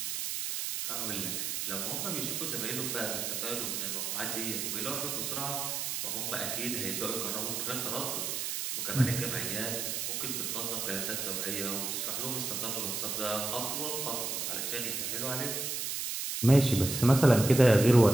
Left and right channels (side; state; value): right; noise; hiss, 2 dB below the sound